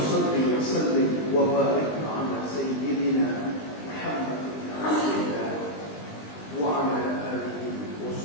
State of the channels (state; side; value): late; right; 20 ms